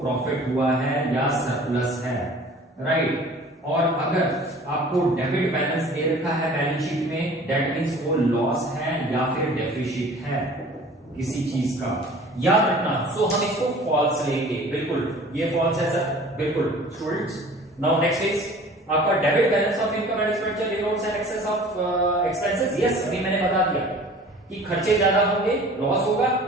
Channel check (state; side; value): normal; both; correlation 0.46